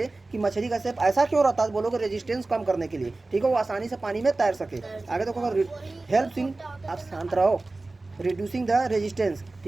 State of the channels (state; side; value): quieter; left; 3.2 dB